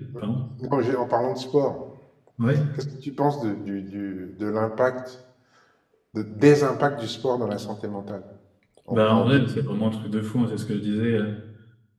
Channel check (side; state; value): both; identical; correlation 1.00